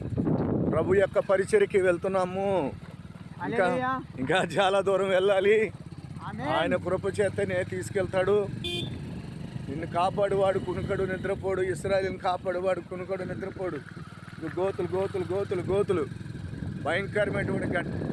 ప్రభు యొక్క పరిచర్యకి వెళ్తున్నాము. ఇంకా ఇంకా చాలా దూరం వెళ్ళాలి. ఆయన కృప చేతనే తీసుకెళ్తాడు. నిన్ను కాపాడువాడు కునుకడు నిద్రపోడు, ఇశ్రాయేలుని కాపాడువాడు కునుకడు నిద్రపోడు. గోతులు గోతులు గోతులు గోతులు, భయంకరమైనటువంటి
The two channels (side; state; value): both; identical; correlation 1.00